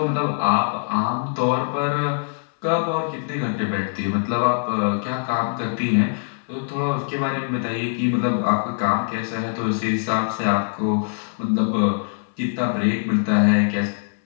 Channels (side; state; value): right; silent; 64 dB below the other